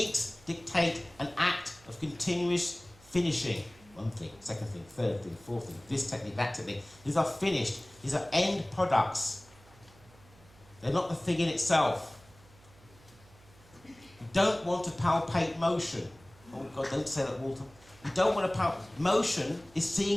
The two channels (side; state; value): right; noise; hum, 26 dB below the sound